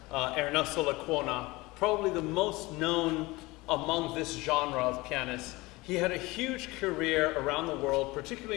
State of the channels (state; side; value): quieter; right; 21.9 dB